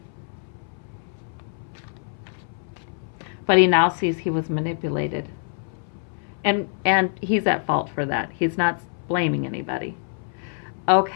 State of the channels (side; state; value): right; silent; 62 dB below the other